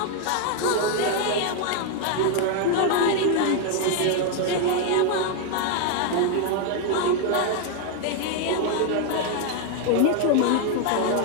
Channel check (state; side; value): different; both; correlation 0.00